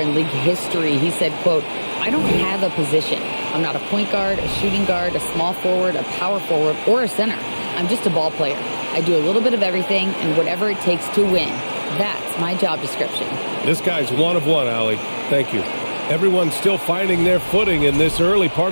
league history. He said, quote, "I don't have a position. I'm not a point guard, a shooting guard, a small forward, a power forward, or a center. I'm just a ball player. I do a little bit of everything and whatever it takes to win. That's my job description." This guy's one of one, Allie. Thank you. Everyone's still finding their footing in this early part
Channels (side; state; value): both; inverted; correlation -1.00